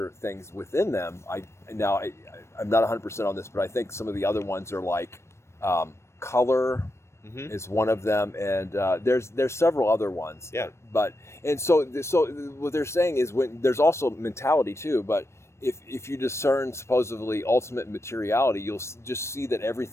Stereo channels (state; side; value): late; right; 0.13 ms